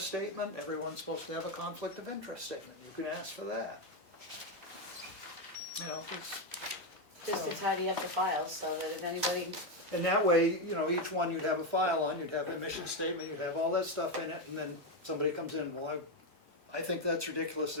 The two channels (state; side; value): normal; both; correlation 0.07